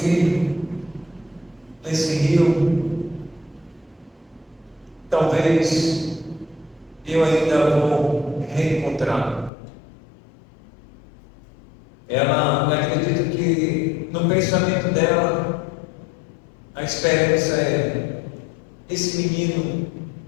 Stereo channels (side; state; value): right; drops out; at 9.5 s